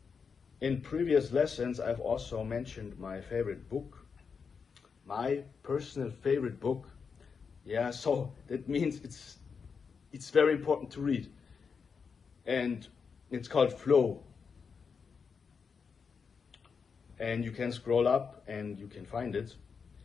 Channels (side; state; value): right; quieter; 5.8 dB